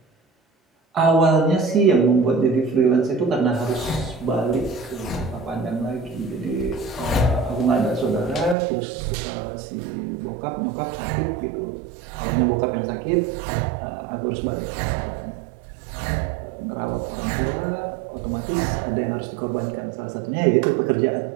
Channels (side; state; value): left; drops out; at 8.6 s